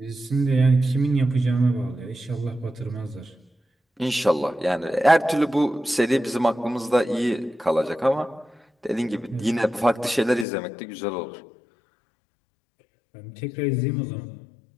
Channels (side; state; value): right; drops out; at 10.5 s